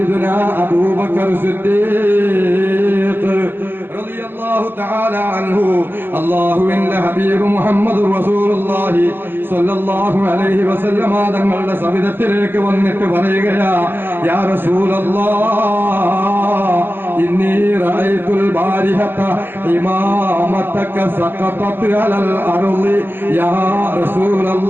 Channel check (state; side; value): late; left; 0.10 ms